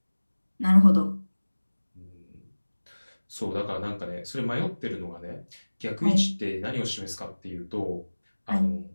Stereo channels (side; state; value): both; inverted; correlation -1.00